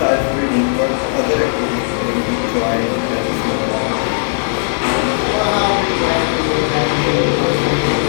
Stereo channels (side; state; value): right; silent; digital silence